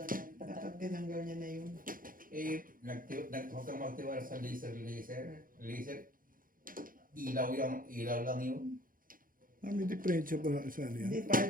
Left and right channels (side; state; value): left; late; 0.40 ms